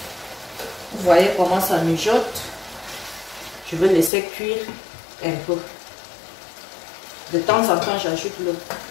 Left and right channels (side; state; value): right; drops out; at 4.1 s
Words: Vous voyez comment ça mijote. Je vais laisser cuire un peu. De temps en temps, j'ajoute l'eau.